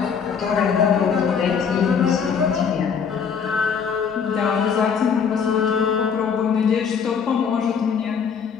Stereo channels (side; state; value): right; quieter; 6.6 dB